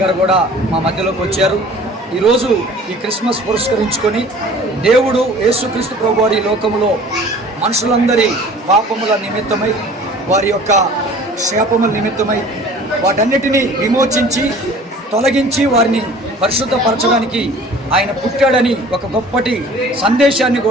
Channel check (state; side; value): normal; both; correlation 0.47